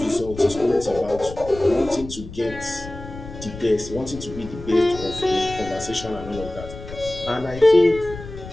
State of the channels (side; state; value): left; noise; rumble, 13 dB below the sound